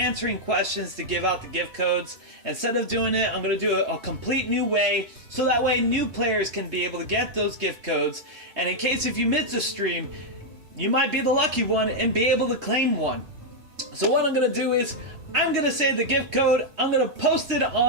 questions to give out the gift codes, instead of doing it, I'm going to do a complete new way. So that way new players can be able to get those gift codes. And in case if you miss a stream, you might be the lucky one and be able to claim one. So what I'm going to do is I'm going to say the gift code. I'm going to post it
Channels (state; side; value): late; left; 3.2 ms